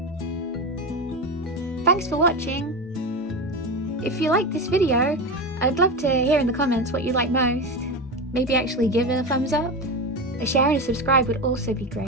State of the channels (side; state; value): both; normal; correlation 0.20